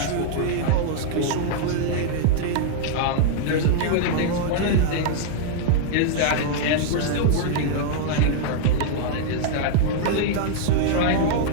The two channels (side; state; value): both; different; correlation -0.01